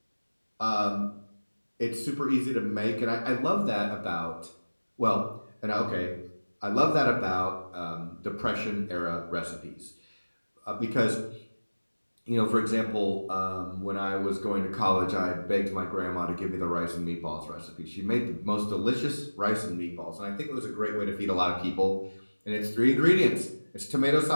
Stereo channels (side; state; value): both; inverted; correlation -1.00